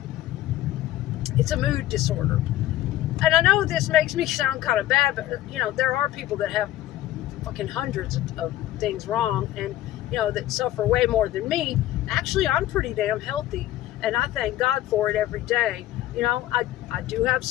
It's a mood disorder. And I know this makes me sound kind of bad, but, there are people that have fucking hundreds of things wrong and, that suffer way more than me. Actually, I'm pretty damn healthy, and I thank God for it every day. I do have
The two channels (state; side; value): quieter; right; 14.3 dB